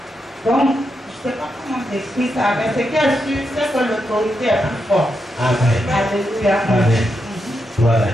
Donc, je ne sais pas comment t'expliquer ça, mais ce qui est sûr, c'est que l'autorité est plus forte. Amen. Alléluia. Amen. Gloire à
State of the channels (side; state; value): both; normal; correlation 0.84